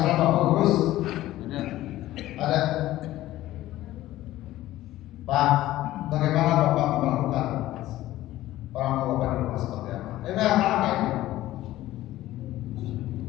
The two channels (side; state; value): right; quieter; 15.3 dB